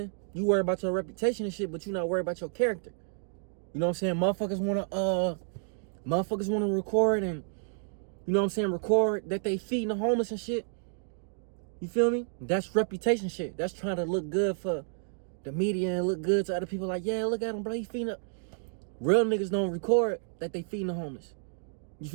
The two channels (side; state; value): left; silent; digital silence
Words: You worry about your reputation and shit, but you not worried about your character. You know what I'm saying? Motherfuckers wanna record and, you know what I'm saying, record that they feeding the homeless and shit. You feel me? That's reputation shit. That's trying to look good for the media and look good to other people. Like, yeah, look at him, bro. He feeding up. Real niggas don't record that they feeding the homeless. You